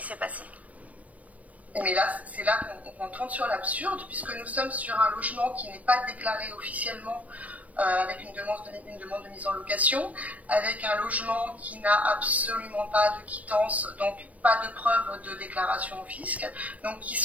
s'est passé? Mais là, c'est là qu'on tombe sur l'absurde, puisque nous sommes sur un logement qui n'est pas déclaré officiellement avec une demande de mise en location, avec un logement qui n'a absolument pas de quittance, donc pas de preuve de déclaration au fisc, donc qui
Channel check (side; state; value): left; late; 0.069 ms